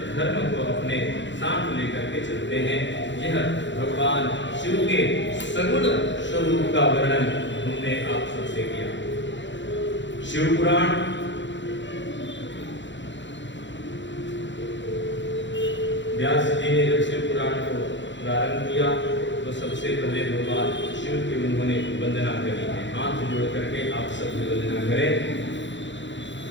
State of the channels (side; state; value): right; late; 0.54 ms